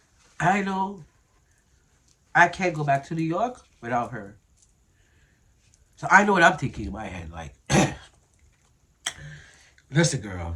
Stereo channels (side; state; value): both; identical; correlation 1.00